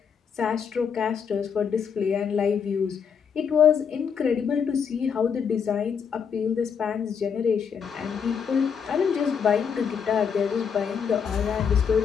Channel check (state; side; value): quieter; right; 6.9 dB